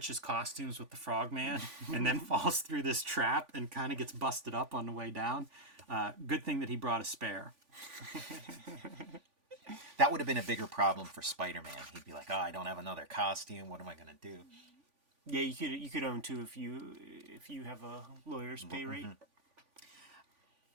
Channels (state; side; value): late; left; 3.5 ms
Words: costumes with the Frogman and then falls through this trap and kind of gets busted up on the way down. Good thing that he brought a spare. That would have been a bigger problem for Spider-Man. He'd be like, "Oh, I don't have another costume. What am I going to do?" Yeah, you could own two if you have a lawyer's pay rate.